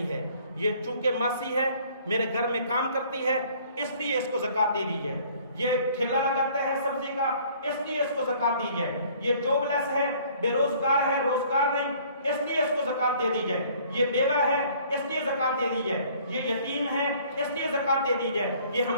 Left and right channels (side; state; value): both; inverted; correlation -0.56